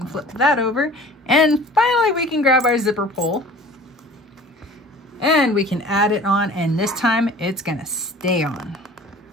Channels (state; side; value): normal; both; correlation 0.45